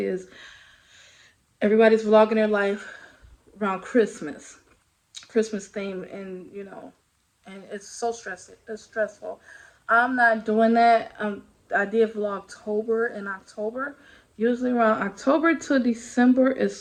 everybody's vlogging their life around Christmas theme, and and it's so stressful. It's stressful. I'm not doing that. I did Vlogtober in October. Usually around October to December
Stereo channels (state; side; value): identical; both; correlation 1.00